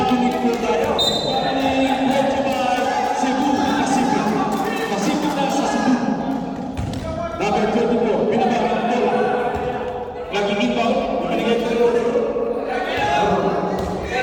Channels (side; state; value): both; identical; correlation 1.00